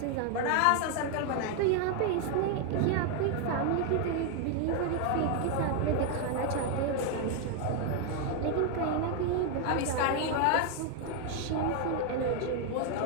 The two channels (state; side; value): different; both; correlation 0.00